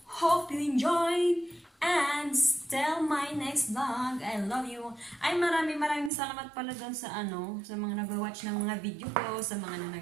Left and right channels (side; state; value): left; drops out; at 6.1 s